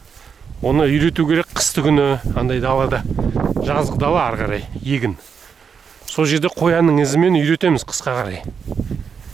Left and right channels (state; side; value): quieter; left; 6.4 dB